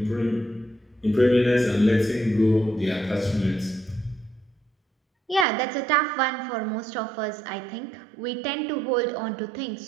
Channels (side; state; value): left; drops out; at 5.5 s